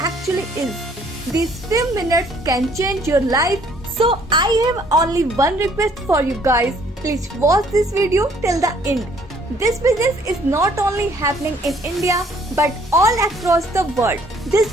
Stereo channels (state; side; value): normal; both; correlation 0.62